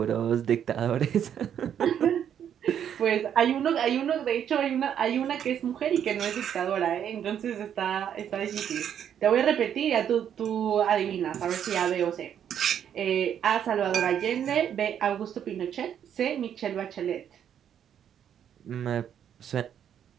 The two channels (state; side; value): quieter; left; 9.2 dB